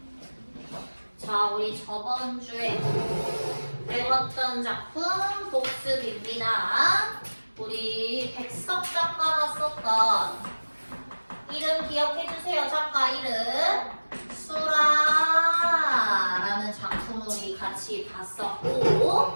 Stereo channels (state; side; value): inverted; both; correlation -1.00